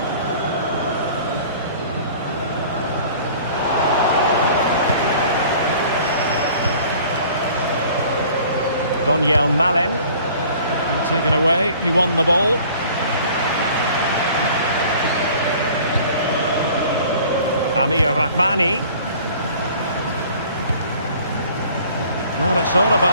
Daniel Malen. And taken away, he won the ball. Amir Rahmani. Well, it's all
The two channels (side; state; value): both; inverted; correlation -0.50